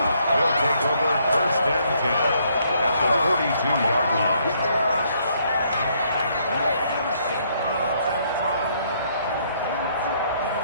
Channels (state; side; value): inverted; both; correlation -0.69